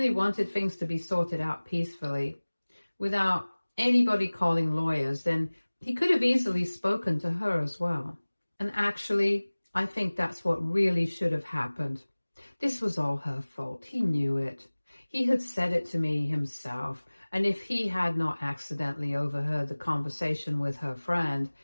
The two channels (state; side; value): inverted; both; correlation -1.00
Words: wanted things to be sorted out peacefully, without anybody calling lawyers, then he could have easily spoken to her as well. And actually, I think that's what really should have happened. This was all her fault. He knew it. He had said it to me himself, and if he had not accidentally overheard the conversation with her friend,